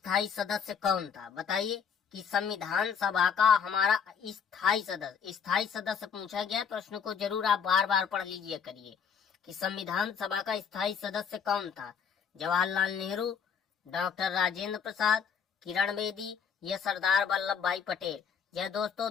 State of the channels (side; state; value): right; quieter; 6.9 dB